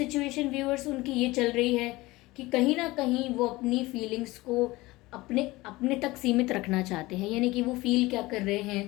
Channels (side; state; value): right; quieter; 20.2 dB